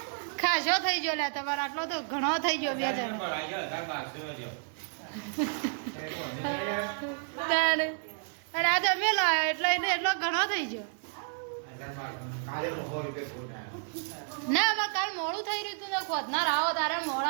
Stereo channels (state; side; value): silent; left; 57 dB below the other